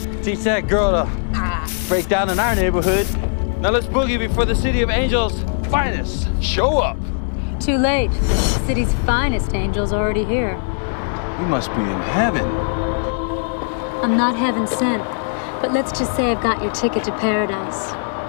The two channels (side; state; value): right; silent; digital silence